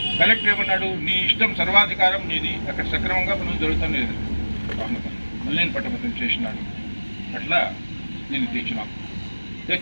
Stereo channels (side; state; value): both; inverted; correlation -1.00